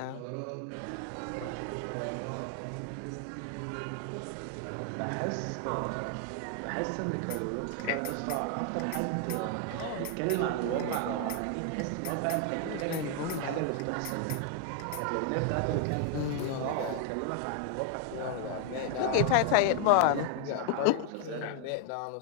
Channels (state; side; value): different; both; correlation 0.00